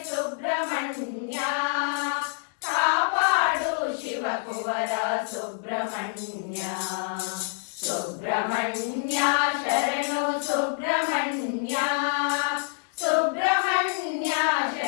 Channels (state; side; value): silent; right; digital silence